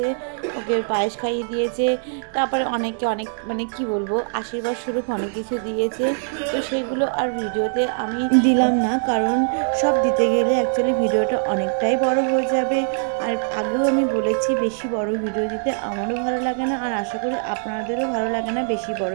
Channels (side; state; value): left; silent; 60 dB below the other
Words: ওকে পায়েস খাইয়ে দিয়েছে। তারপরে অনেকে অনেক মানে কি বলবো আশীর্বাদ স্বরূপ অনেক কিছু দিয়েছে। তো সেগুলো আর ভিডিওতে আমি দিলাম না, কারণ সব দিতে গেলে অ্যাকচুয়ালি ভিডিওটা অনেকটাই বড় হয়ে যাবে। আর আগেও আমি বলেছি বেশি বড় ভিডিও দিতে আমারও ভালো লাগে না, আর আশা করি আপনাদেরও ভালো লাগে না বেশি বড়